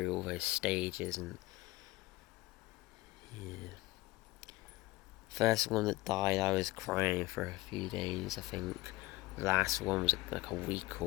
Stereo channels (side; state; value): right; quieter; 19.6 dB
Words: all those stages, and yeah. First one that died, I was crying for a few days, I think. The last one was like a week